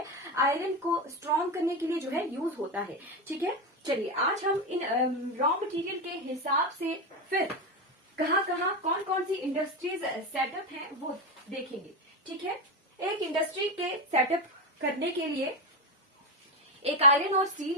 आयरन को स्ट्रॉन्ग करने के लिए जो है यूज होता है। ठीक है, चलिए आज हम इन रॉ मटेरियल के हिसाब से फिर कहाँ कहाँ कौन कौन सी इंडस्ट्रीज सेटअप हैं वो देखेंगे। ठीक है, एक इंडस्ट्री के सेटअप करने के लिए, एक आयरन और स्टील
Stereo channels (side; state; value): both; normal; correlation 0.12